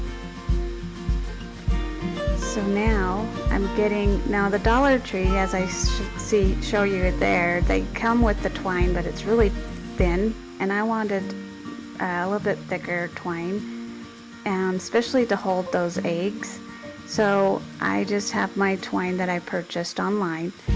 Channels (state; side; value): identical; both; correlation 1.00